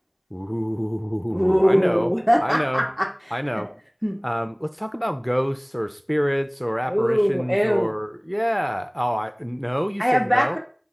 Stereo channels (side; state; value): both; identical; correlation 1.00